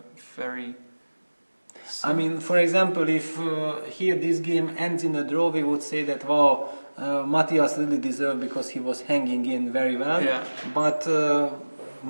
very. I mean, for example, if here this game ends in a draw, we would say that, wow, Matthias really deserved because he was hanging in very well. Yeah. But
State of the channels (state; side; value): inverted; both; correlation -1.00